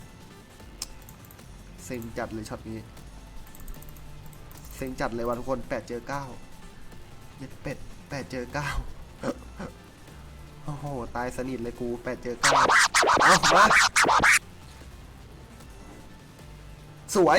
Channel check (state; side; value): identical; both; correlation 1.00